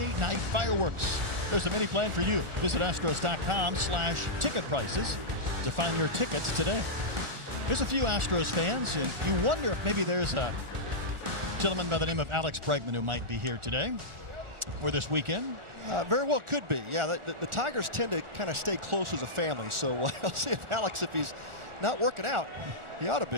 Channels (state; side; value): late; left; 1.4 ms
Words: night fireworks. There's a mini plan for you. Visit Astros.com/ticket prices to find your tickets today. There's a few Astros fans, and you wonder if maybe there's a gentleman by the name of Alex Bregman who might be here today or this weekend. Very well could be. Yeah, the Tigers tend to kind of stay close as a family, so I'll see if Alex, if he's not working out, he ought to